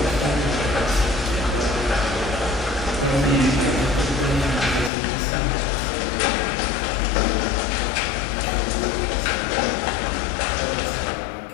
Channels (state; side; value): drops out; right; at 4.9 s